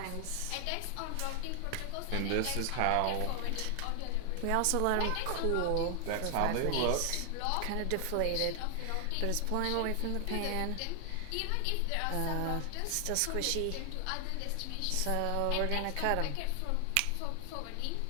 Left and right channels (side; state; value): both; different; correlation 0.00